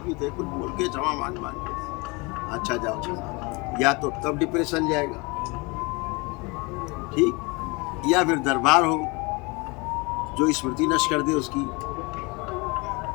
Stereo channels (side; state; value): right; quieter; 27.4 dB